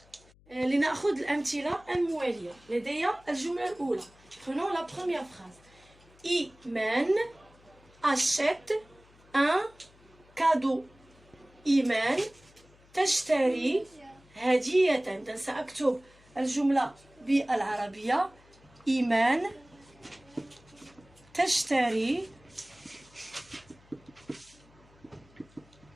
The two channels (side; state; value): left; noise; hum, 28 dB below the sound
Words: لنأخذ الأمثلة الموالية. لدي الجملة الأولى. Prenons la première phrase. إيمان achète un cadeau. إيمان تشتري هدية. إذن سأكتب الجملة بالعربية. إيمان تشتري